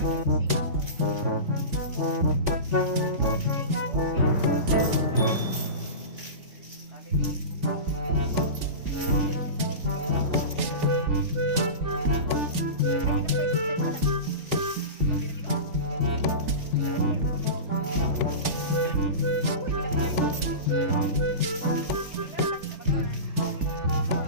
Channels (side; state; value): left; late; 3.5 ms